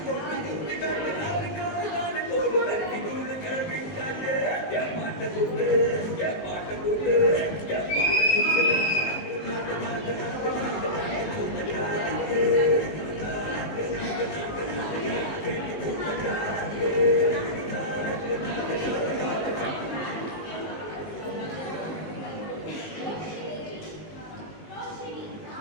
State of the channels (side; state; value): right; late; 19 ms